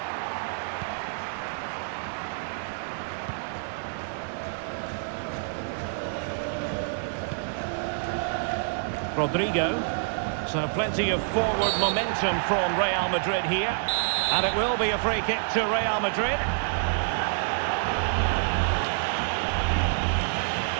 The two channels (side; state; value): left; silent; 60 dB below the other